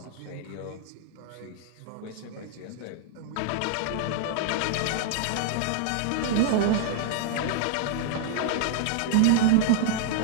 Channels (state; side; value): different; both; correlation -0.01